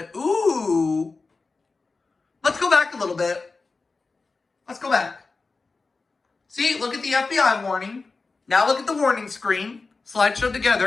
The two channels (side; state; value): right; quieter; 4.0 dB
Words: Ooh. Let's go back a little bit. Let's go back. See, look at the FBI warning. Now look at the warning screen. Slideshow